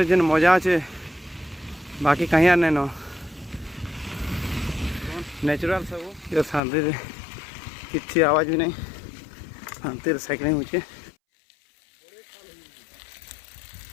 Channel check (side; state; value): right; drops out; at 6.6 s